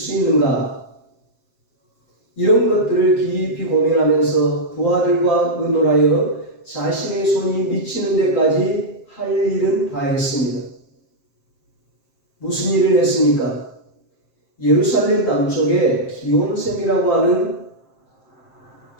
있는가? 이런 것들을 깊이 고민하면서 부하들과 의논하여 자신의 손이 미치는 데까지 할 일은 다 했습니다. 무슨 일을 했습니까? 예루살렘 남쪽에 기온샘이라고 하는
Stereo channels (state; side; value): late; right; 7.6 ms